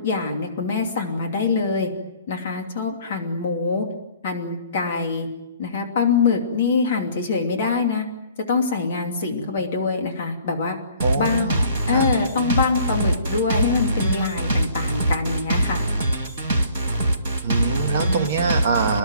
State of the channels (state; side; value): inverted; both; correlation -0.55